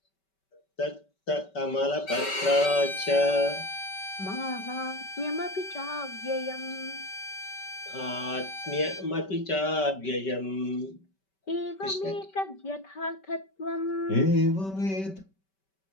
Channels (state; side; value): late; right; 5.2 ms